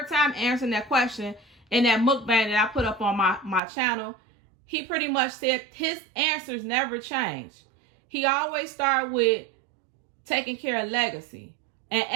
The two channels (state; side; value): drops out; left; at 3.6 s